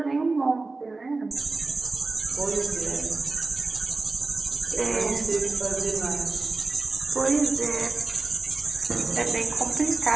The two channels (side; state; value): left; quieter; 3.6 dB